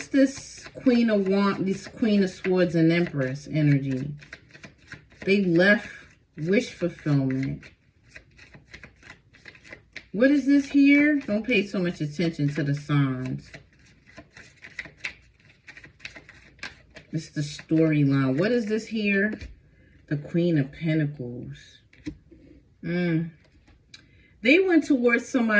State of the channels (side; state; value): both; identical; correlation 1.00